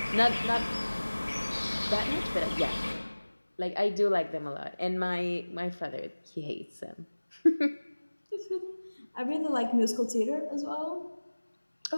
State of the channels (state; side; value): inverted; both; correlation -1.00